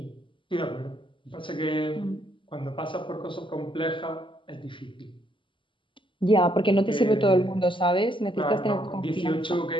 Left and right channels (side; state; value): right; late; 0.24 ms